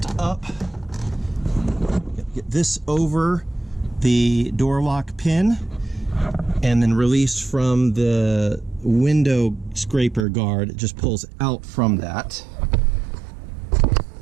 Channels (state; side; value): drops out; left; at 10.2 s